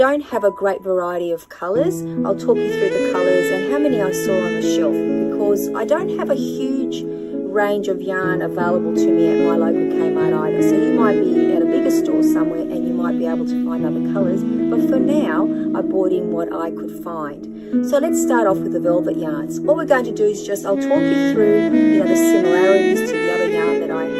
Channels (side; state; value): both; identical; correlation 1.00